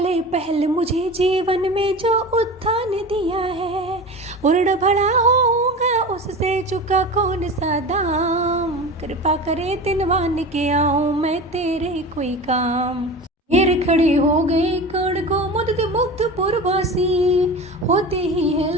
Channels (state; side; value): normal; both; correlation 0.32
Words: पहल मुझे जीवन में जो उत्थान दिया है। उर्ण भला होऊंगा उससे चुका कौन सा दाम, कृपा करे दिनवान के आऊं मैं तेरे कोई काम। घेर खड़े हो गए कर्ण को मुग्ध मुग्ध पुरवासी, होते ही है